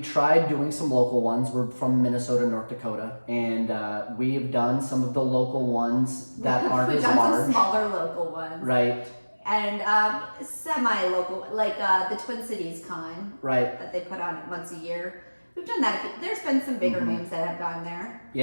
tried doing some local ones. We're from Minnesota, North Dakota, and we've done some of the local ones that aren't We've as done large. some smaller local ones. Right. and semi-local, like the Twin Cities Con Right. that they put on once a year. We've done that. There's been some bigger names that have gone there.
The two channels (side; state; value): both; inverted; correlation -1.00